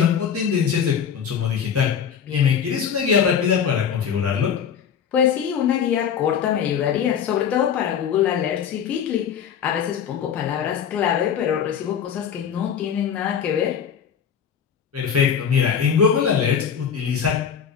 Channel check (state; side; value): quieter; right; 7.9 dB